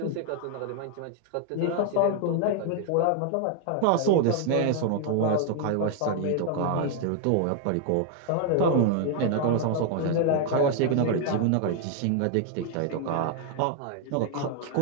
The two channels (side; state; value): both; different; correlation 0.00